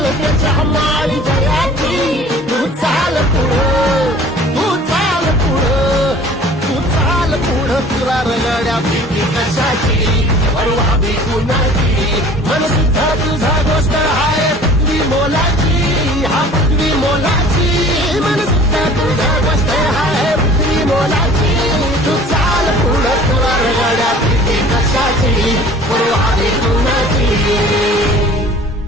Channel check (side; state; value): both; normal; correlation 0.47